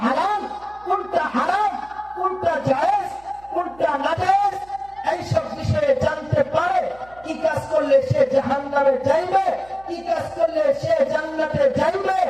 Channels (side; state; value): right; noise; hum, 25 dB below the sound